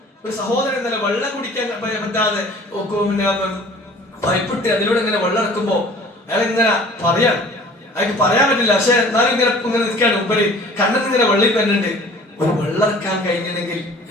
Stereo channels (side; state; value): both; normal; correlation 0.48